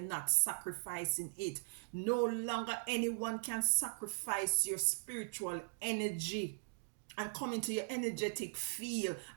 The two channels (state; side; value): silent; left; digital silence